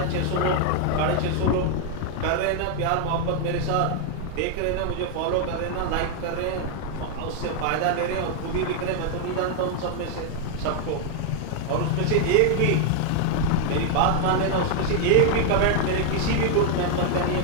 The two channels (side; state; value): both; different; correlation 0.00